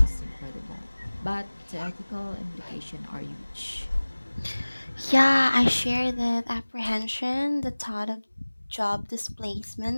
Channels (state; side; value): inverted; both; correlation -1.00